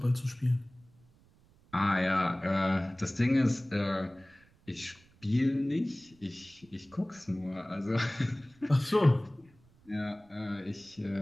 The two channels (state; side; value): noise; right; rumble, 30 dB below the sound